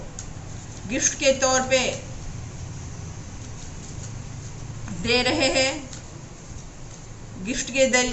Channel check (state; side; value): identical; both; correlation 1.00